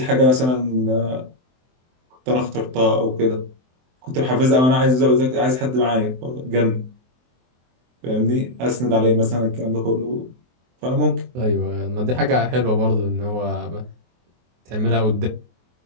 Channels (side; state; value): left; late; 23 ms